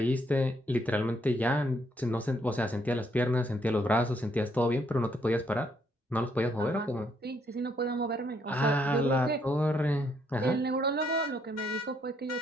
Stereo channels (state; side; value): normal; both; correlation 0.72